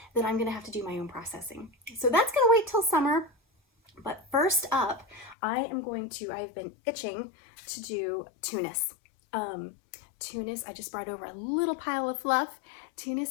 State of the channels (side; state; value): right; drops out; at 5.4 s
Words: that I'm gonna have to do my own processing. So that's gonna wait till summer. But first up, I've been itching to do Tunis. Tunis, I just brought over a little pile of fluff.